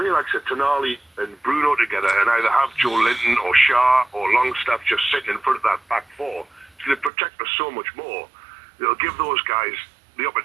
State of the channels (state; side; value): drops out; left; at 7.1 s